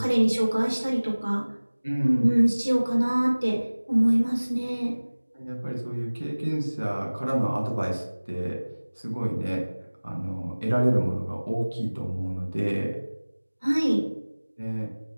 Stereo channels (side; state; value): both; inverted; correlation -1.00